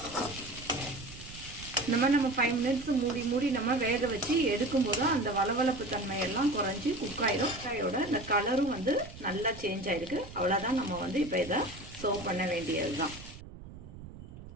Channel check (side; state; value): right; noise; rumble, 15 dB below the sound